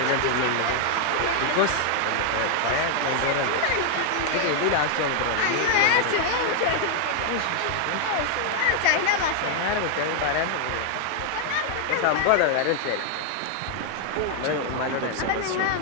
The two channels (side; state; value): both; different; correlation 0.00